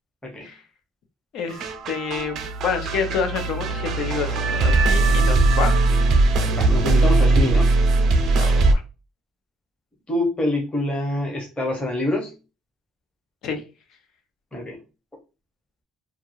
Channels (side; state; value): both; normal; correlation 0.71